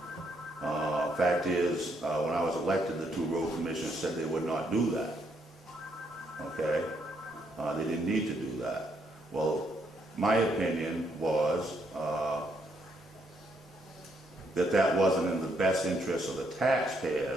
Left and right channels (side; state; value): both; normal; correlation 0.74